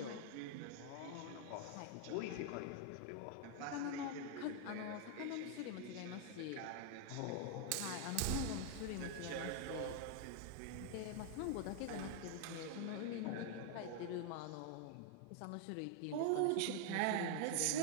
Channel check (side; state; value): both; different; correlation 0.00